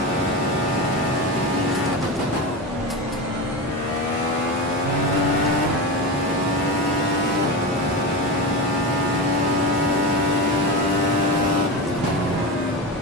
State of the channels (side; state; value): both; normal; correlation 0.22